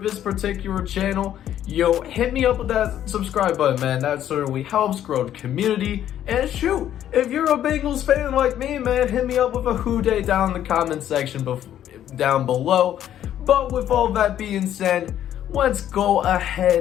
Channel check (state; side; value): quieter; right; 11.1 dB